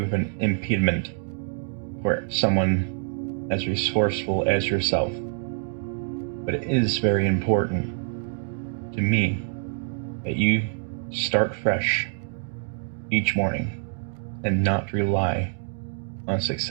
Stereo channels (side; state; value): left; silent; digital silence